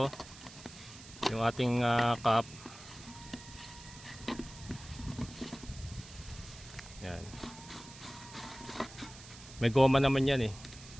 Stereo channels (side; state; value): right; noise; hiss, 17 dB below the sound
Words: yung ating cup. Yan. May goma naman yan